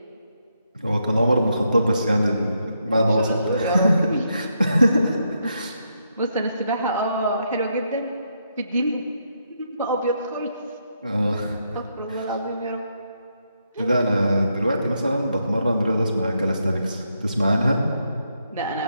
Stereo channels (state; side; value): inverted; both; correlation -0.79